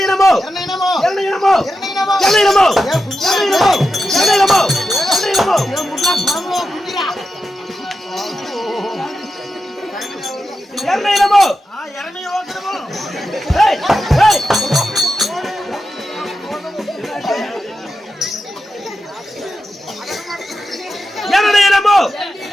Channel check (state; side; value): normal; both; correlation 0.90